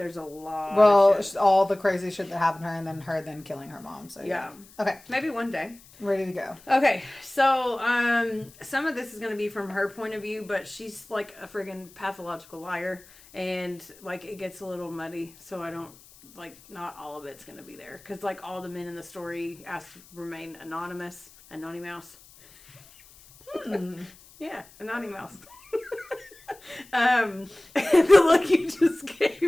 a lot of shit. All the crazy shit that happened to her, and then her killing her mom. So yeah. Okay. Maybe one day. Ready to go. Okay. So, some of this is going to be from her point of view, but she's like a friggin' pathological liar. And, like, it gets a little muddy. So I don't, like, not all of it's going to be there. Because, like, all the men in the story asked to remain anonymous. Anonymous. Yeah. Anonymous. The look you just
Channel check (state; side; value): noise; left; hiss, 24 dB below the sound